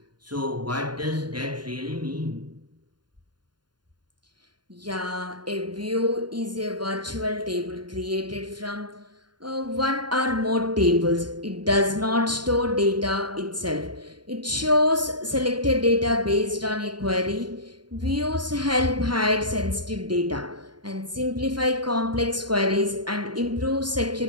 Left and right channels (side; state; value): left; late; 0.71 ms